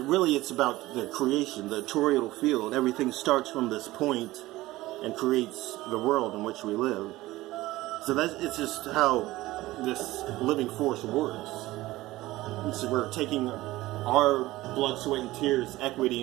it's about the creation, the toroidal field. Everything starts from this point and creates the world in which we live. So it's just how this living force works. So we're taking our blood, sweat, and tears,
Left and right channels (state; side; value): quieter; left; 17.8 dB